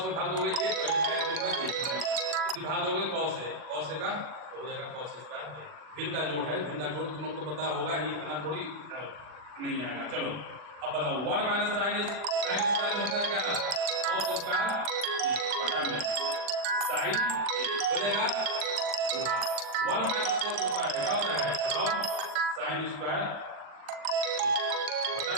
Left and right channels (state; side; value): late; left; 40 ms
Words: में भाग दोगे 1 इसी भाग दोगे कॉस है का तो हो जाएगा कॉस स्क्वायर। भिन्न का जोड़ है, भिन्न का जोड़ तुम लोग को पता होगा ही, इतना थोड़ी नहीं आएगा। चलो अब बताओ 1 माइनस साइन स्क्वायर हो जाएगा कॉस स्क्वायर बटा में साइन हो जाएगा 1 माइनस कॉस स्क्वायर क्या होता है? बताओ साइन स्क्वायर बटा